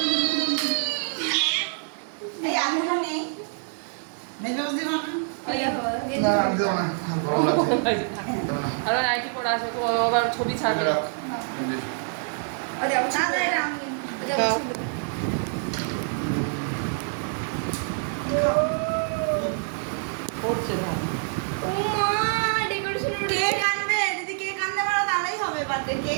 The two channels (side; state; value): left; silent; 61 dB below the other